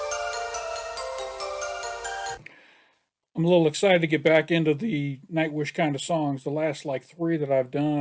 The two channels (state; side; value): identical; both; correlation 1.00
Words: I'm a little excited to get back into the Nightwish kind of songs. The last like three that I've